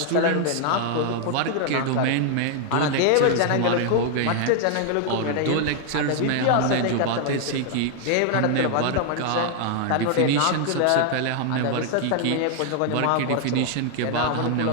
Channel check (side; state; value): both; different; correlation 0.00